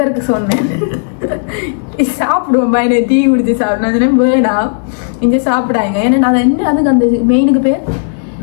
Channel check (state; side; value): silent; right; digital silence